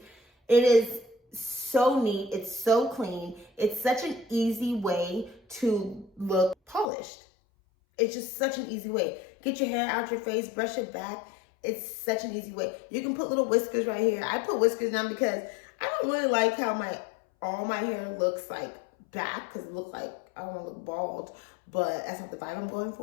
It is so neat. It's so clean. It's such an easy way to look polished. It's just such an easy way. Get your hair out your face, brush it back. It's such an easy way. You can put little whiskers right here. I put whiskers down because I don't really like how all my hair looks like back, because it looks like I don't want to look bald, but that's not the vibe I'm going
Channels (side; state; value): right; drops out; at 6.9 s